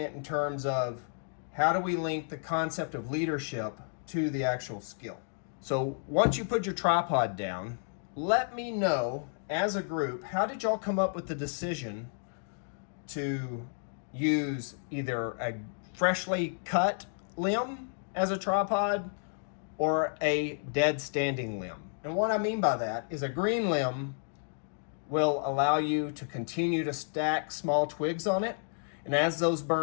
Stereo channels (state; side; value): silent; right; digital silence